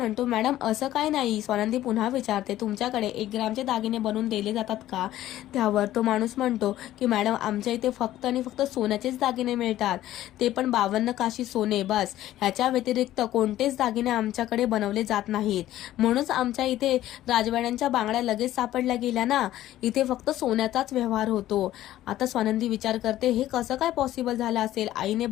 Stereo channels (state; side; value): quieter; right; 13.9 dB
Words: मॅडम असं काय नाही. स्वानंदी पुन्हा विचारते, तुमच्याकडे 1 ग्रामचे दागिने बनवून दिले जातात का? त्यावर तो माणूस म्हणतो की मॅडम आमच्या इथे फक्त आणि फक्त सोन्याचेच दागिने मिळतात, ते पण 52 काशी सोने बस. ह्याच्या व्यतिरिक्त कोणतेच दागिने आमच्याकडे बनवले जात नाहीत. म्हणूनच आमच्या इथे राजवाड्यांच्या बांगड्या लगेच सापडल्या गेल्या ना. इथे फक्त सोन्याचाच व्यवहार होतो. आता स्वानंदी विचार करते, हे कसं काय पॉसिबल झालं असेल? आईने